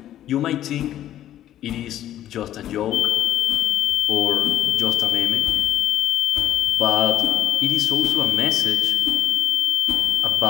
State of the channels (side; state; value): right; quieter; 12.2 dB